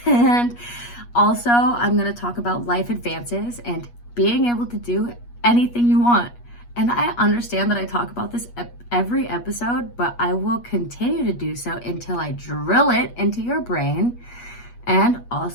And also, I'm going to talk about life advances and being able to do anything you want. And I understand that I talk about this every episode, but I will continue to do so until I drill it into your brain. And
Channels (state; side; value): late; right; 8.4 ms